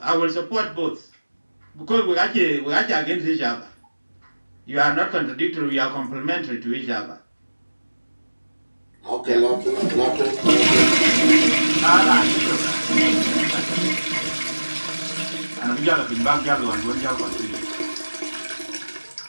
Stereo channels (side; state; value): both; inverted; correlation -1.00